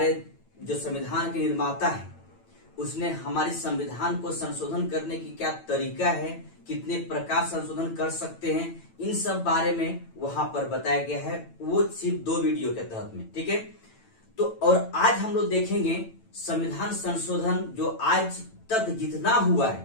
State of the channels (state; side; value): late; right; 9.0 ms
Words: जो संविधान के निर्माता है उसने हमारे संविधान को संशोधन करने की क्या तरीका है, कितने प्रकार संशोधन कर सकते हैं, इन सब बारे में वहां पर बताया गया है। वो सिर्फ 2 वीडियो के तहत में, ठीक है। तो और आज हम लोग देखेंगे संविधान संशोधन जो आज तक जितना हुआ